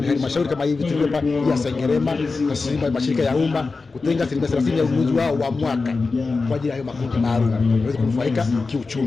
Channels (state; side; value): quieter; right; 4.1 dB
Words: ni halmashauri kama hivi tulipa ya Sengerema, taasisi mashirika ya umma kutenga 30% ya ununuzi wao wa mwaka kwa ajili ya hayo makundi maalum waweze kunufaika